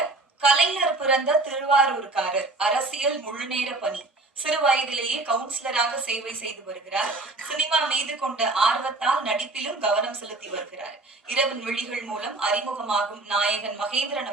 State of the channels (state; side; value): quieter; left; 3.1 dB